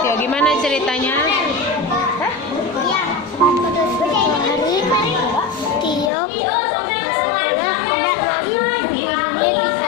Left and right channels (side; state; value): right; drops out; at 6.1 s